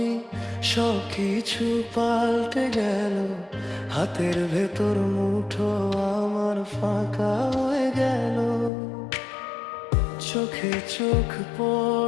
সব কিছু পাল্টে গেল। হাতের ভেতর মুঠো আমার ফাঁকা হয়ে গেল। চোখে চোখ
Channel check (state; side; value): drops out; right; at 8.7 s